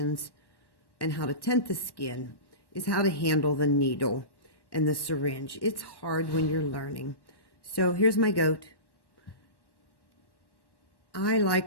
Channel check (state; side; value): late; right; 1.1 ms